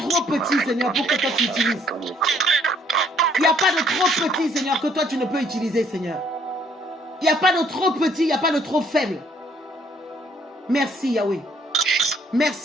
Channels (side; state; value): both; normal; correlation 0.64